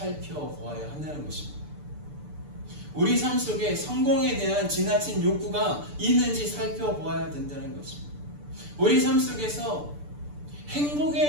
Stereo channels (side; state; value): left; late; 6.8 ms